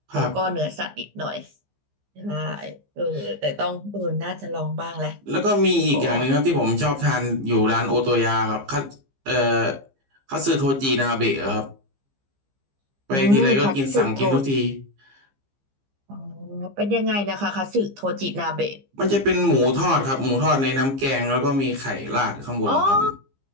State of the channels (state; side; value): late; left; 15 ms